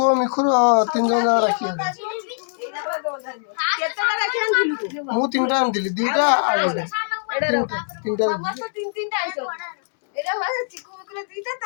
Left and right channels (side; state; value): right; silent; 64 dB below the other